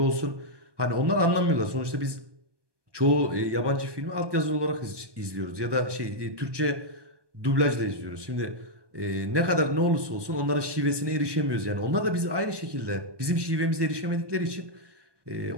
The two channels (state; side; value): late; left; 1.2 ms